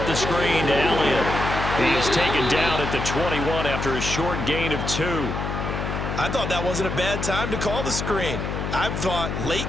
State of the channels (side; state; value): left; noise; hum, 3 dB below the sound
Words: the screen to Elliott. He is taken down at the 21 after a short gain of 2. I thought that wasn't a bad time to call the screen. I thought